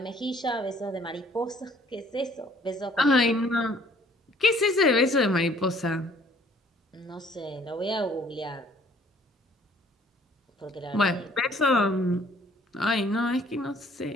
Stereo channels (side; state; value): both; normal; correlation 0.58